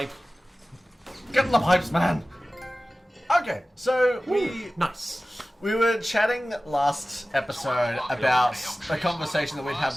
Get in the pipes, man. Okay, so Nice. we were chatting last episode about a conversation that we'd had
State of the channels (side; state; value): both; normal; correlation 0.96